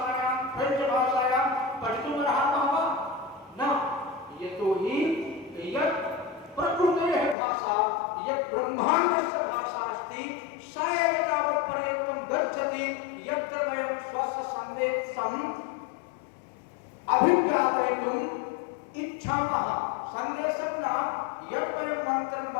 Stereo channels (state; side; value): drops out; right; at 7.4 s